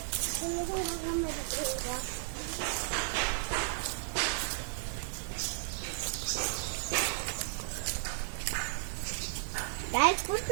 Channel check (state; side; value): silent; left; digital silence